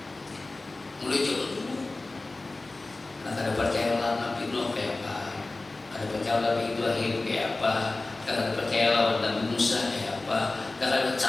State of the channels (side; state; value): right; quieter; 3.2 dB